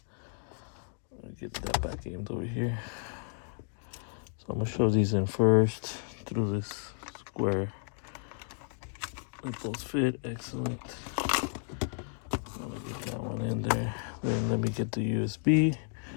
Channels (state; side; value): silent; right; 56 dB below the other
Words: Let me get that back aimed over here. So I'm gonna show these in first through this square. Let those fit. Excellent. Let me get that one in there. Then let me get the USB.